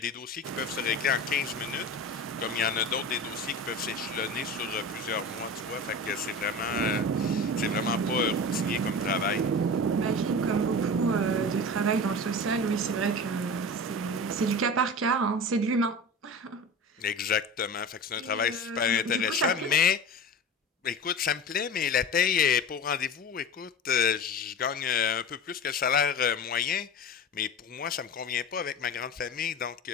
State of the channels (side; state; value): both; normal; correlation 0.31